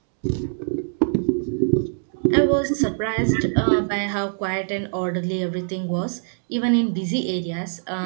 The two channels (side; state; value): left; silent; digital silence